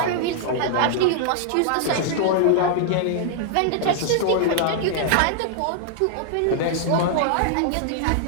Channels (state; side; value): different; both; correlation -0.01